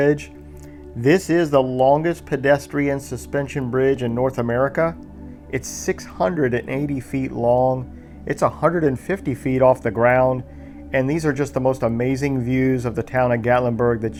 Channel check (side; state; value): both; identical; correlation 1.00